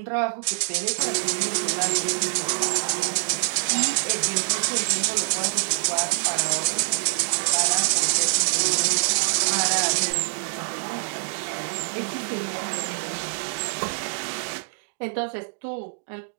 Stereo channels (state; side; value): silent; left; digital silence